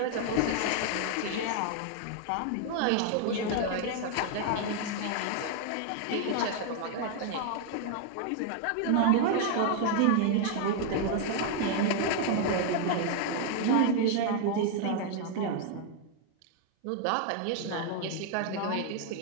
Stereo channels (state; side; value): different; both; correlation 0.00